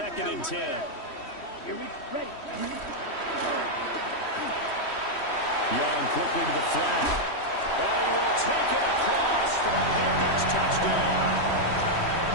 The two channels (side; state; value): right; late; 3.1 ms